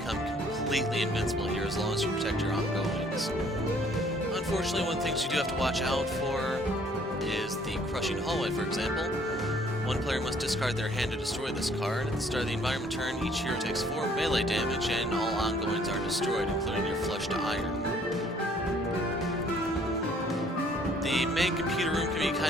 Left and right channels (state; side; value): normal; both; correlation 0.60